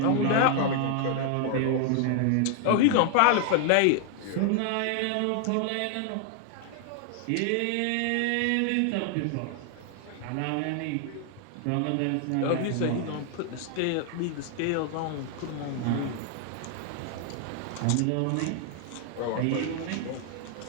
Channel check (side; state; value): both; different; correlation 0.00